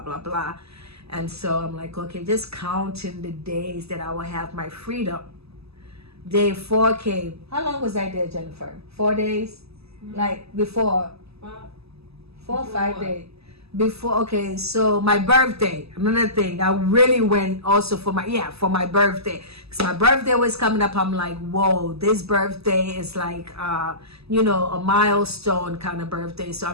blah, blah. And so I'm like, okay, just counting the days that I will have my freedom. Day 4 came. How long was I there, Jennifer? 4 days? Like before? 4 or 5 days. Before, okay, so my birthday, another thing, I really went also for my birthday, because my birthday was coming up. I'm like, whoa, this birthday is like a milestone kind of birthday, so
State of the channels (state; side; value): late; left; 0.79 ms